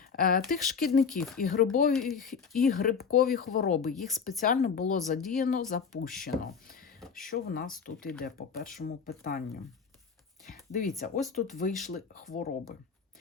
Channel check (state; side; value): quieter; right; 6.0 dB